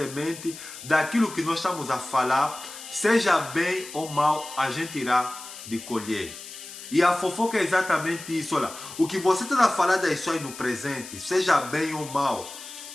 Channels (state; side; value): noise; left; hiss, 13 dB below the sound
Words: daquilo que nós estamos a falar, seja bem ou mal, a gente irá de colher. E a fofoca é exatamente isso. Olha, o que você está a falar das pessoas no presente, seja bem ou mal,